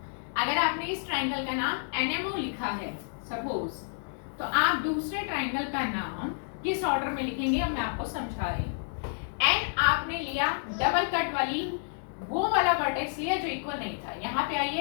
अगर आपने इस ट्रायंगल का नाम NMO लिखा है सपोज, तो आप दूसरे ट्रायंगल का नाम किस ऑर्डर में लिखेंगे अब मैं आपको समझा रही हूँ। N आपने लिया डबल कट वाली, वो वाला वर्टेक्स लिया जो इक्वल नहीं था। यहाँ पे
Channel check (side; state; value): right; silent; digital silence